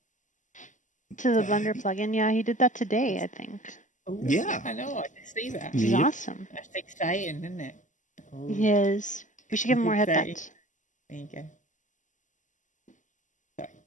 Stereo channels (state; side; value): late; right; 0.37 ms